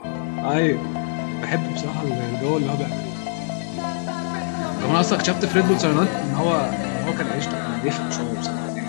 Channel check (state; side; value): silent; right; 63 dB below the other